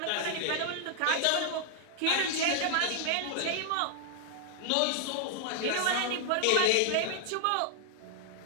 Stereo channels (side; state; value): both; different; correlation 0.00